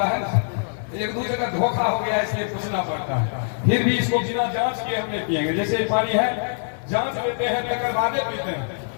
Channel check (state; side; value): silent; right; 61 dB below the other